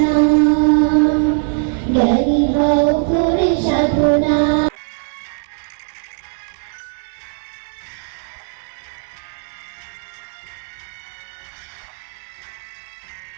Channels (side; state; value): left; silent; 58 dB below the other